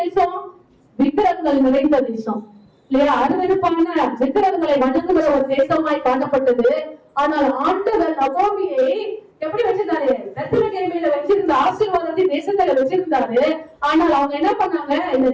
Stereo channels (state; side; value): identical; both; correlation 1.00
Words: தேசம், விக்கிரகங்கள் நிறைந்த தேசம் இல்லையா? அருவருப்பான விக்கிரகங்களை வணங்குகிற ஒரு தேசமாய் காணப்பட்டது. ஆனால் ஆண்டவர் நகோமியை எப்படி வச்சிருந்தாரு, பெத்லகேமில வச்சிருந்த ஆசீர்வாதத்தை தேசத்துல வச்சிருந்தாரு. ஆனால் அவங்க என்ன பண்ணாங்க, இந்த